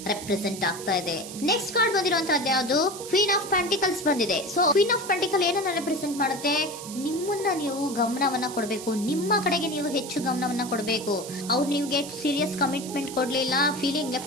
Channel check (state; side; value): noise; right; hiss, 12 dB below the sound